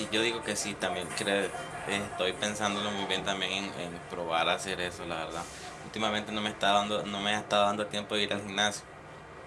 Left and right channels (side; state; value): both; identical; correlation 1.00